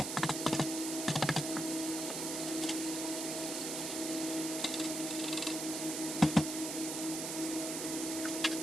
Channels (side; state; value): right; noise; hiss, 3 dB below the sound